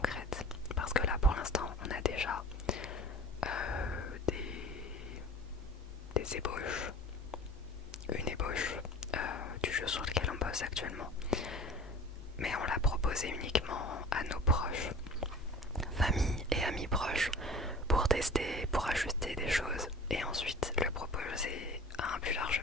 Parce que là, pour l'instant, on a déjà des ébauches, une ébauche du jeu sur lequel on bosse actuellement. Mais on l'a proposé uniquement à nos proches, famille et amis proches, pour tester, pour ajuster des choses et ensuite le proposer à un plus large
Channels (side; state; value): both; normal; correlation 0.41